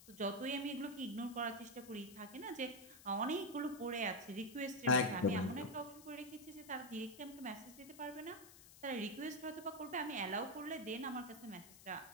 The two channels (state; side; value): noise; left; hiss, 18 dB below the sound